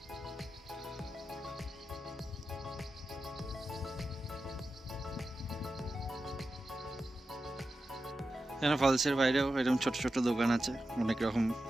এখানে ফলসের বাইরেও এরকম ছোট ছোট দোকান আছে,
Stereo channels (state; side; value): normal; both; correlation 0.92